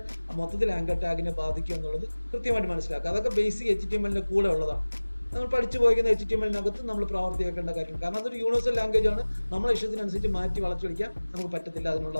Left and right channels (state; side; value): inverted; both; correlation -1.00